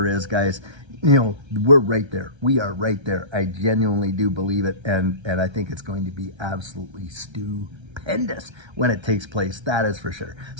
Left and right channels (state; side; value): late; left; 1.3 ms